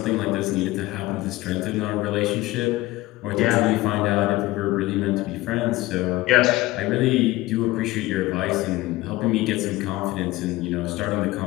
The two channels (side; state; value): right; quieter; 18.4 dB